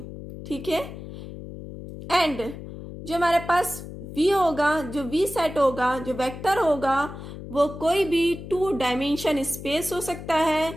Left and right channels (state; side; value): noise; left; hum, 11 dB below the sound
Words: ठीक है, एंड जो हमारे पास v होगा, जो v सेट होगा, जो वेक्टर होगा, वो कोई भी 2 डायमेंशन स्पेस हो सकता है,